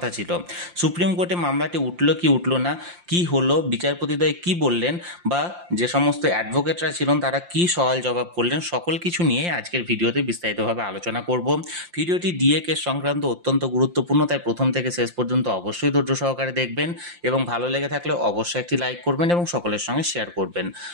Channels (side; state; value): left; late; 5.7 ms